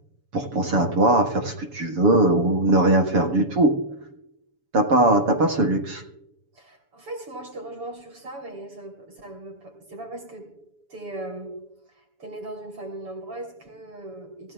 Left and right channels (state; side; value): late; left; 7.0 ms